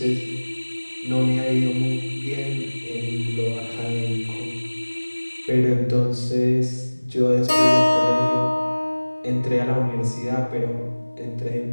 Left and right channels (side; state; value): both; inverted; correlation -1.00